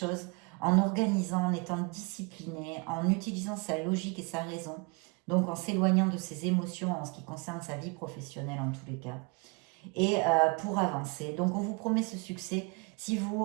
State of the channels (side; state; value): left; quieter; 31.2 dB